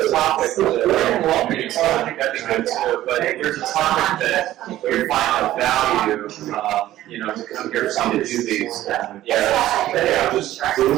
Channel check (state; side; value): quieter; left; 14.2 dB